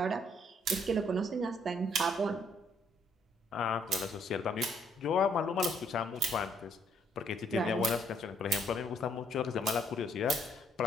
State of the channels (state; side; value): normal; both; correlation 0.68